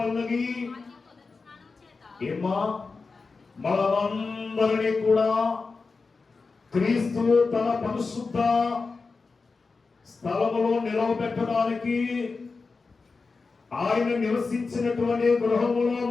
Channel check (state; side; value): quieter; right; 4.3 dB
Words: ఏమా మనమందరినీ కూడా క్రీస్తు తన పరిశుద్ధ స్థలములో నిలవబెట్టడానికి, ఆయన నివసించినటువంటి గృహములో